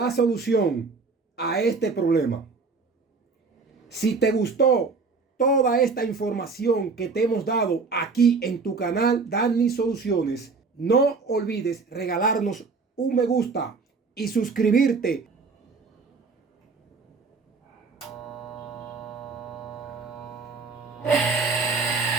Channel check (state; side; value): quieter; left; 4.5 dB